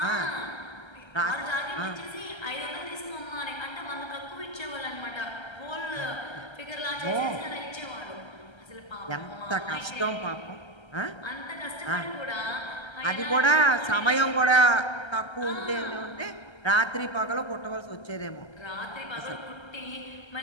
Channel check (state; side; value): late; right; 1.3 ms